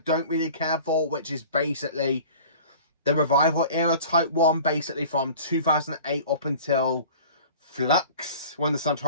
really care for, which is basically the Revival era Type 1, basically from 2008 up until Flux, when the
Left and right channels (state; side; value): inverted; both; correlation -0.43